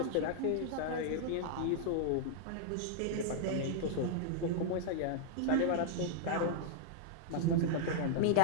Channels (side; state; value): both; different; correlation -0.01